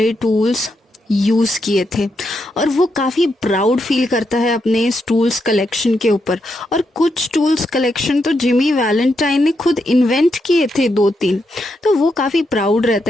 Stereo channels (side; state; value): both; normal; correlation 0.82